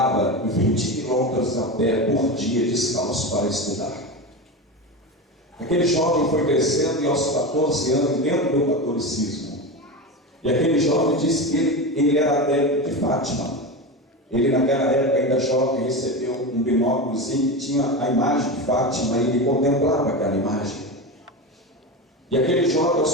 20 quilômetros a pé por dia descalço para estudar. Aquele jovem foi crescendo e aos 14 anos dentro do catolicismo. E aquele jovem disse que ele era adepto de Fátima. Ele naquela época ainda jovem recebeu um binóculozinho que tinha a imagem de Fátima e ele contemplava aquela imagem. E aquele jovem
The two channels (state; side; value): normal; both; correlation 0.22